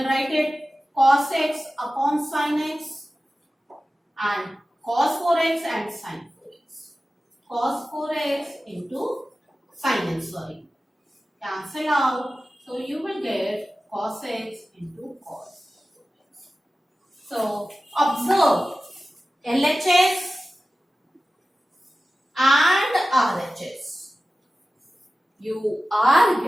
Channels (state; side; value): normal; both; correlation 0.95